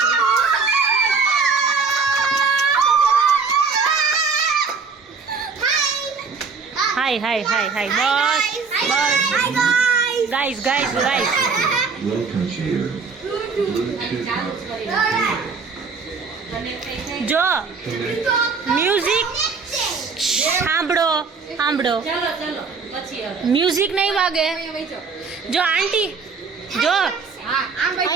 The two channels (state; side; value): quieter; left; 5.0 dB